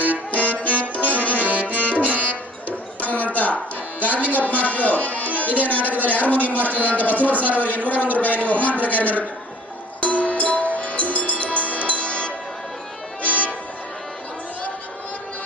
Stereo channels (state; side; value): normal; both; correlation 0.51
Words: ಗಾರ್ಲಿಂಗಪ್ಪ ಮಾಸ್ಟರ್ ಇದೇ ನಾಟಕದಲ್ಲಿ ಹಾರ್ಮೋನಿಯಂ ಮಾಸ್ಟರ್ ಅಂತ ಬಸವರಾಜ ಸರ್ ಅವರಿಗೆ 101 ರೂಪಾಯಿಯನ್ನು ಬಹುಮಾನ ಪ್ರಕಾರ ನಡೆಯುತ್ತೆ.